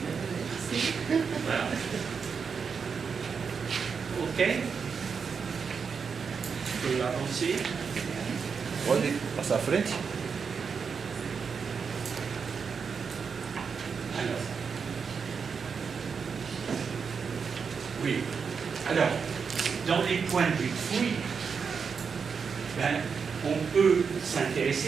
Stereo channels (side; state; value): left; quieter; 5.9 dB